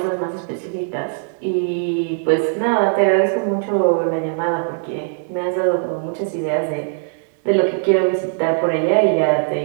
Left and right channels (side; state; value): left; silent; digital silence